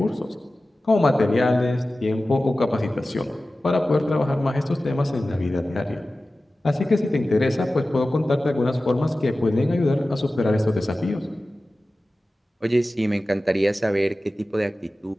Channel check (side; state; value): both; normal; correlation 0.96